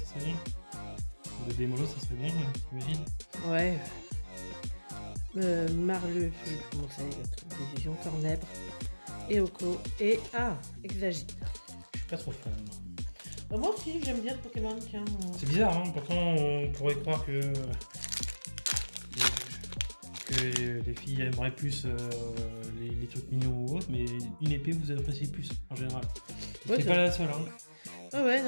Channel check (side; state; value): both; inverted; correlation -1.00